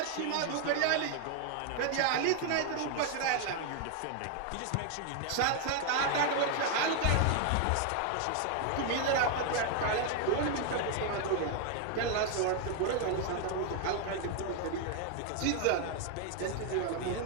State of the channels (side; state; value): both; different; correlation 0.00